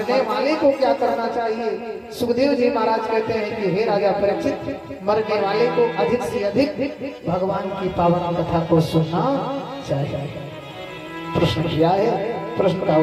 वाले को क्या करना चाहिए? सुखदेव जी महाराज कहते हैं कि हे राजा परीक्षित, मरने वाले को अधिक से अधिक भगवान की पावन कथा को सुनना चाहिए। प्रश्न किया है, प्रश्न का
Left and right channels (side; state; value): both; identical; correlation 1.00